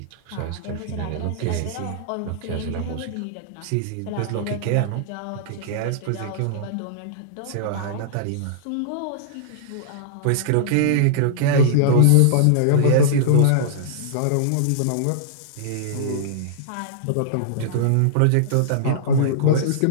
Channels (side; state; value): both; different; correlation -0.01